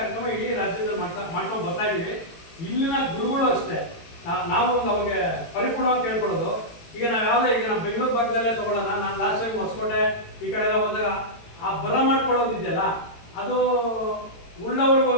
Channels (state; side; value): late; right; 18 ms